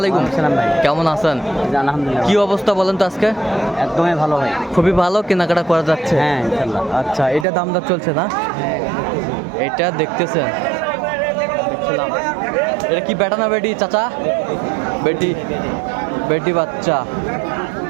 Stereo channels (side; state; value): left; drops out; at 7.5 s